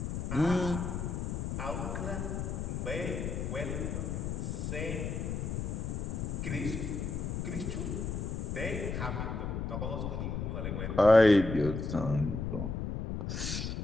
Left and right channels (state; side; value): noise; left; rumble, 3 dB below the sound